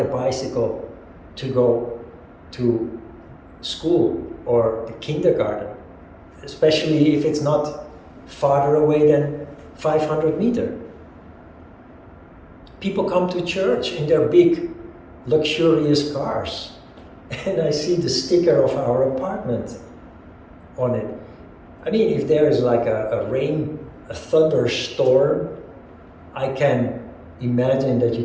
a bicycle to go to school or the kindergarten, especially if it's not farther away than 500 meters. People come to church in their big, luxurious cars, and I see the sticker of our apartment on it. I mean, if there is like a thunderstorm, I can imagine that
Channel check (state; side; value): identical; both; correlation 1.00